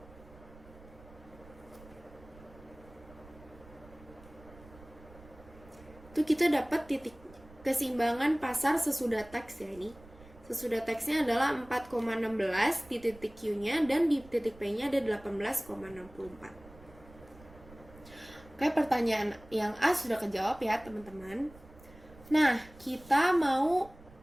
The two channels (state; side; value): noise; right; rumble, 21 dB below the sound